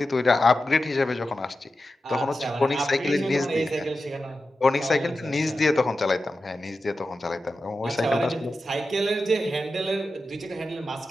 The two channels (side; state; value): both; normal; correlation 0.92